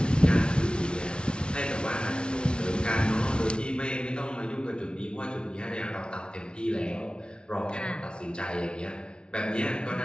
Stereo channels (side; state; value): right; late; 0.056 ms